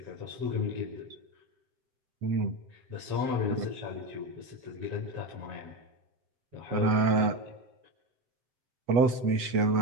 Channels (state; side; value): late; left; 8.3 ms